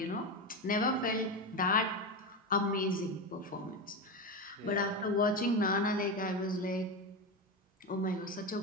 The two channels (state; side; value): normal; both; correlation 0.17